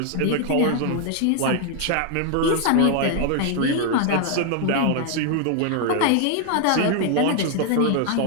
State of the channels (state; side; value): different; both; correlation 0.00